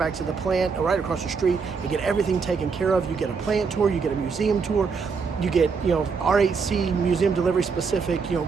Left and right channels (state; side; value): quieter; left; 5.3 dB